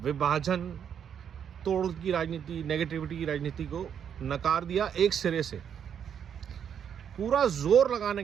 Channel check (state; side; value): quieter; left; 8.3 dB